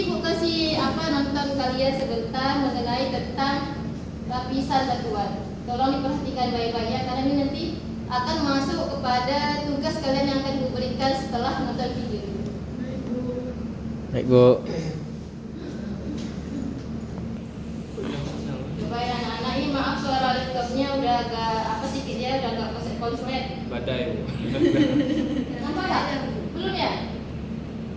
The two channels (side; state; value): both; identical; correlation 1.00